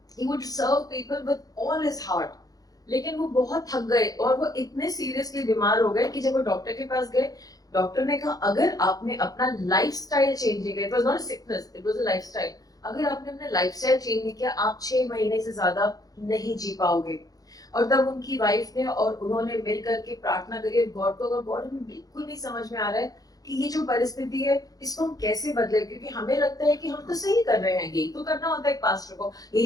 he would serve people with all his heart। लेकिन वो बहुत थक गए और वो इतने सीरियसली बीमार हो गए कि जब वो डॉक्टर के पास गए, डॉक्टर ने कहा अगर आपने अपना लाइफस्टाइल चेंज नहीं किया, it was not sickness, it was a lifestyle, अगर आपने अपना लाइफस्टाइल चेंज नहीं किया, आप 6 महीने से ज्यादा नहीं जी पाओगे। और तब उनकी वाइफ ने और उन्होंने मिल करके प्रार्थना करी गॉड को। अगर गॉड हमें बिल्कुल नहीं समझ में आ रहा है कि ये जो परिस्थिति है इसको हम कैसे बदले, क्योंकि हमें लगता है कि हम तो सही कर रहे हैं, यही तो करना होता है एक पास्टर को,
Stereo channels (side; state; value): right; late; 0.18 ms